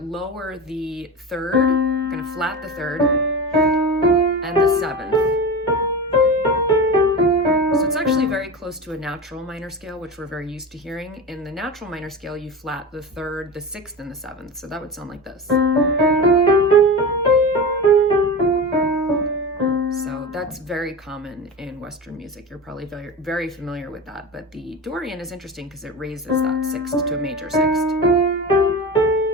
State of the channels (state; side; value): normal; both; correlation 0.26